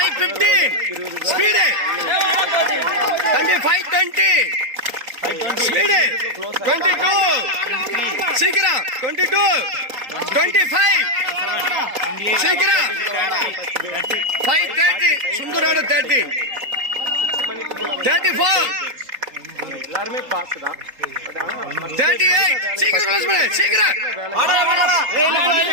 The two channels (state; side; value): late; left; 3.8 ms